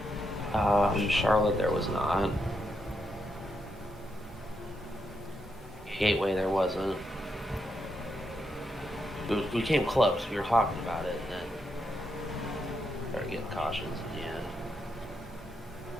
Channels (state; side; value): normal; both; correlation 0.81